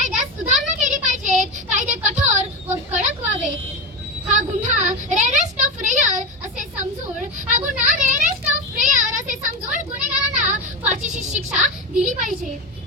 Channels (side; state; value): both; normal; correlation 0.17